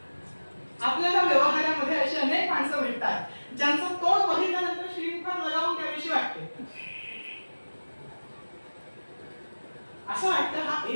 आपल्याला व्यवहारामध्ये अशी अनेक माणसं भेटतात ज्यांचं तोंड बघितल्यानंतर श्रीमुखात लगावून त्याविषयी वाटते असं वाटतं हा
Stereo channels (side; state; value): both; inverted; correlation -1.00